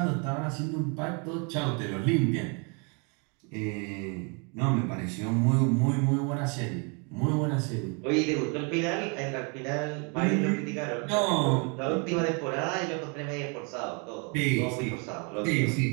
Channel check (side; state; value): left; quieter; 34.6 dB